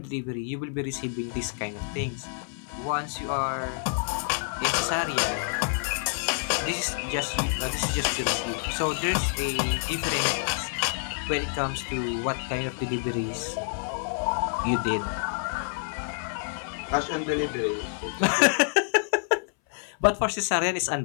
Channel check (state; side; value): silent; right; 58 dB below the other